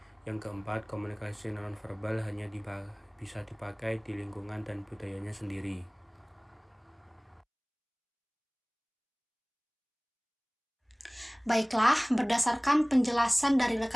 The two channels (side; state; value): both; identical; correlation 1.00